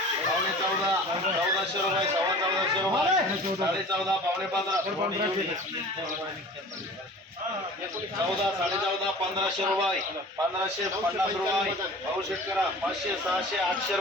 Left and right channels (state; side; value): normal; both; correlation 0.42